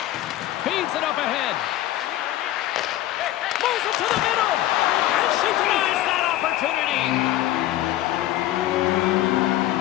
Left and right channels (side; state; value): right; quieter; 14.3 dB